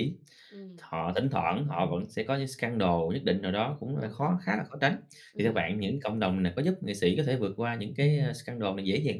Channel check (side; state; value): both; identical; correlation 1.00